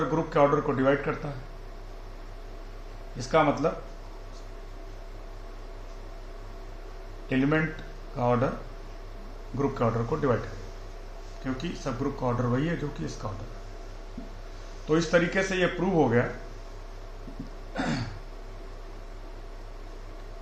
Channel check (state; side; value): identical; both; correlation 1.00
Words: ग्रुप के ऑर्डर को डिवाइड करता है। इसका मतलब एलिमेंट का ऑर्डर ग्रुप के ऑर्डर को डिवाइड करेगा, क्योंकि सब ग्रुप का ऑर्डर वही है जो कि इसका ऑर्डर है। तो इस तरीके से ये प्रूव हो गया